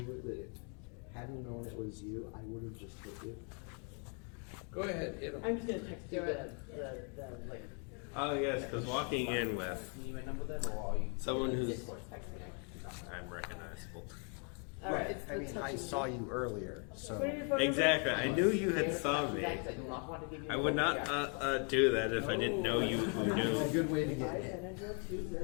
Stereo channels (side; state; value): right; quieter; 38.9 dB